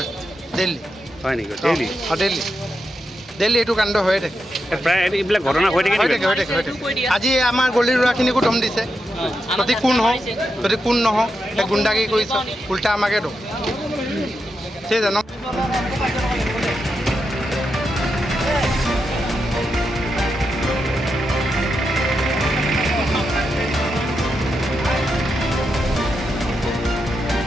ডেইলি হয় নেকি ডেইলি ডেইলি এইটো কাণ্ড হৈয়ে থাকে প্ৰায় এইবিলাক ঘটনা হৈ থাকে আজি আমাৰ গলিৰ ল'ৰাখিনিকো দম দিছে যদি কোন নহওক সেই গুণ্ডাগিৰি কৰিছে উল্টা আমাকে দম সেই জানো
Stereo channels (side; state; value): both; normal; correlation 0.86